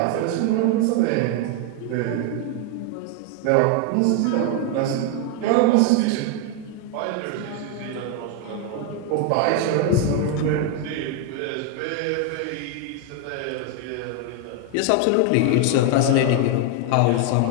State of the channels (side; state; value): both; different; correlation 0.01